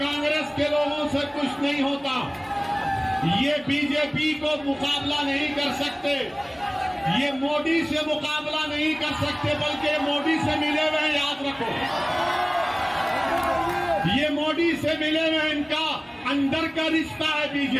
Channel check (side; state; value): both; identical; correlation 1.00